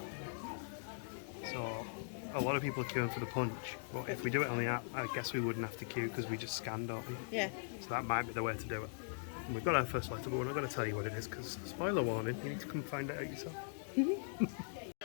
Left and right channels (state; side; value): silent; right; digital silence